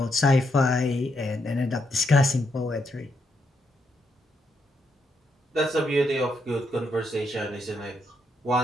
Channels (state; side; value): normal; both; correlation 0.78